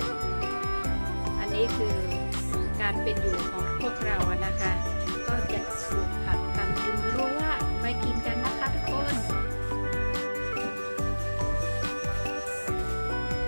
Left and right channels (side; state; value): both; inverted; correlation -1.00